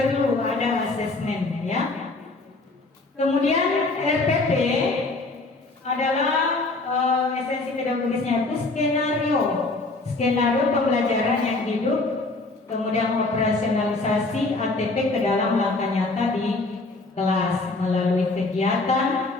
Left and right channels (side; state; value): right; quieter; 3.3 dB